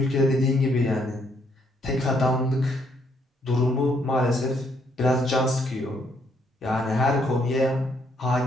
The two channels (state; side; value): normal; both; correlation 0.71